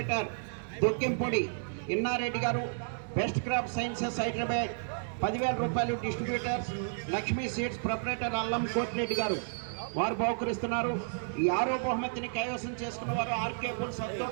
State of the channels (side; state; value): left; silent; digital silence